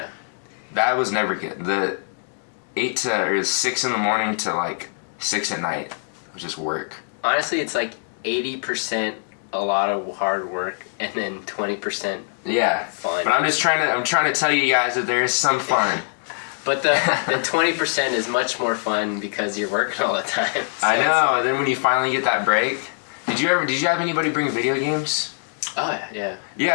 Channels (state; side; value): silent; right; digital silence